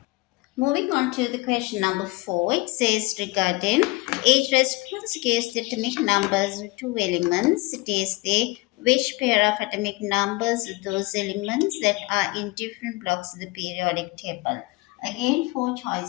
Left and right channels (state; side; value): quieter; right; 23.2 dB